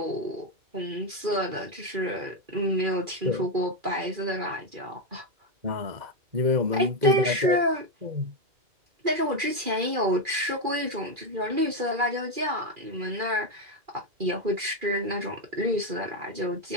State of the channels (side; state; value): left; late; 2.4 ms